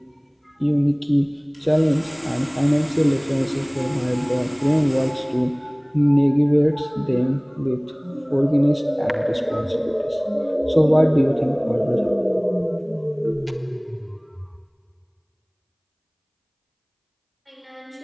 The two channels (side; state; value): both; identical; correlation 1.00